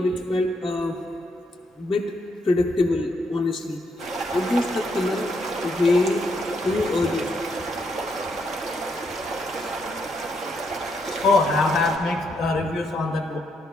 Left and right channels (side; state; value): both; normal; correlation 0.77